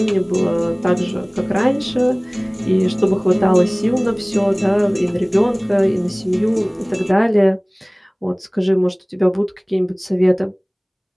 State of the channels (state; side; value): identical; both; correlation 1.00